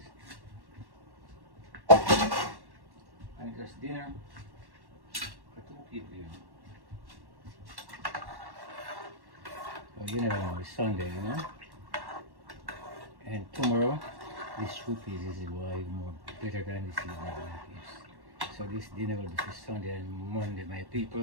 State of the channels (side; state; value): left; late; 1.1 ms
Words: just dinner for 2 people, you know. So you never know, it's Sunday, you know. And tomorrow, this soup is why more better than this evening, my peeps. So this dinner will be for Sunday and Monday, my